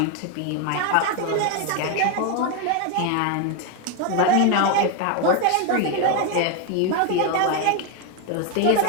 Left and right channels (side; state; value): both; different; correlation 0.01